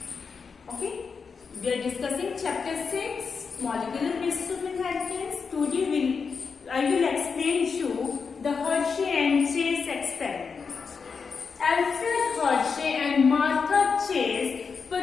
Okay, we are discussing chapter 6, molecular basis of inheritance. Today I will explain to you the Hershey and Chase experiment. Alfred Hershey and Martha Chase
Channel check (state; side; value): quieter; right; 5.5 dB